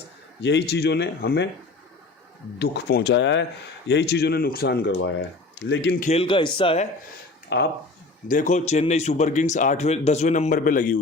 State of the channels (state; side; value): quieter; right; 3.3 dB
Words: यही चीज़ों ने हमें दुख पहुंचाया है, यही चीज़ों ने नुकसान करवाया है, लेकिन खेल का हिस्सा है। आप देखो चेन्नई सुपर किंग्स 8वें 10वें नंबर पे लगी